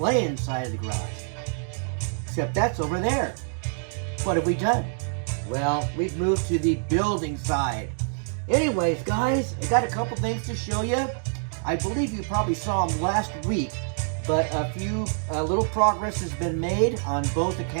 side of the garage. Except that's over there. What have we done? Well, we've moved to the building side. Anyways, guys, I got a couple things to show you. I believe you probably saw them last week, but a little progress has been made on both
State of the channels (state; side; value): silent; left; digital silence